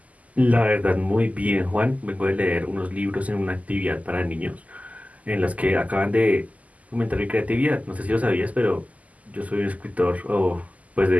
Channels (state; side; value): late; left; 0.073 ms